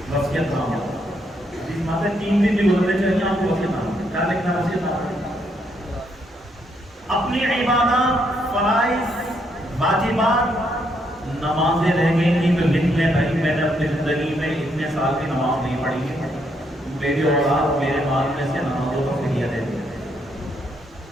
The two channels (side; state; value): both; normal; correlation 0.75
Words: وصیت نامہ۔ جس ماتے 3 دن بھی گزرنے چاہیے آپ کو وصیت نامہ کیا لکھنا ہے؟ وصیت نامہ اپنی عبادات، فرائض، واجبات، نمازیں رہ گئی تھی تو لکھ لیں بھائی میں نے اپنی زندگی میں اتنے سال کی نماز نہیں پڑھی ہے، میری اولاد میرے مال میں سے نمازوں کا فدیہ دے دے،